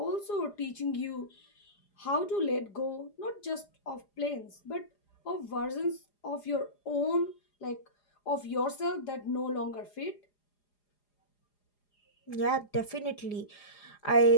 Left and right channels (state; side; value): late; right; 4.9 ms